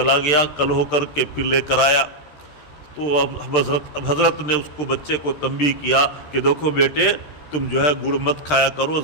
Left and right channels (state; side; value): late; right; 13 ms